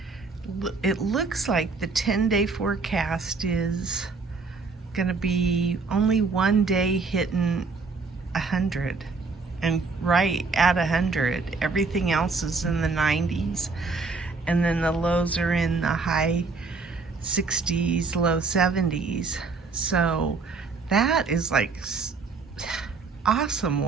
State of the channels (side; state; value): left; quieter; 4.4 dB